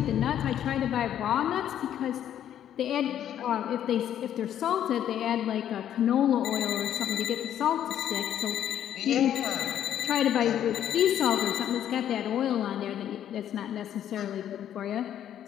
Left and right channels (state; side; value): quieter; right; 10.5 dB